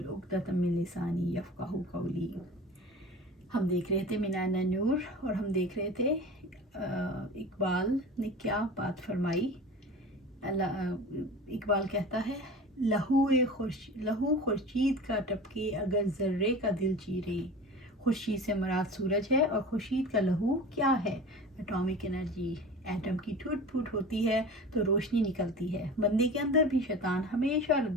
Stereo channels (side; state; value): both; normal; correlation 0.36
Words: उक़दतम मिन लिसानी यफ़क़हू क़ौली। हम देख रहे थे मीनान नूर और हम देख रहे थे इकबाल ने क्या बात फरमाई। इकबाल कहता है, लहू खुर्शीद का टपके अगर ज़र्रे का दिल चीरे। खुर्शीद से मुराद सूरज है और खुर्शीद का लहू क्या है? Atomic energy. एटम की टूट फूट होती है तो रोशनी निकलती है। बंदे के अंदर भी शैतान हमेशा